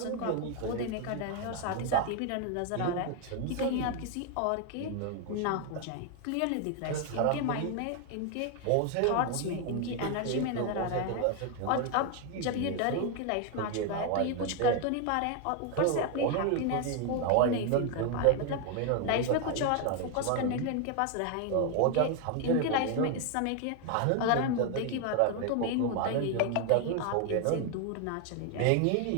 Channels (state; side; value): different; both; correlation 0.01